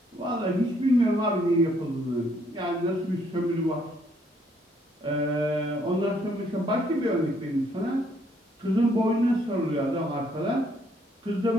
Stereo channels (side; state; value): both; normal; correlation 0.68